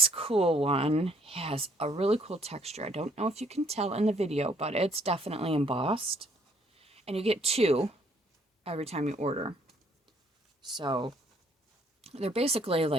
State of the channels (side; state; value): both; normal; correlation 0.65